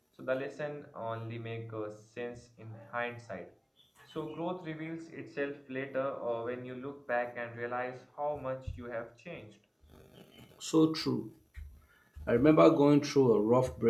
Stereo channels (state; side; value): identical; both; correlation 1.00